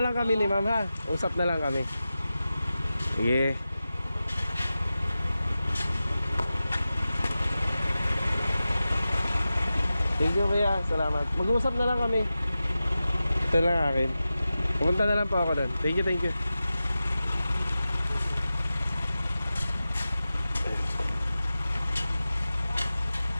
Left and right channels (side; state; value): both; inverted; correlation -0.94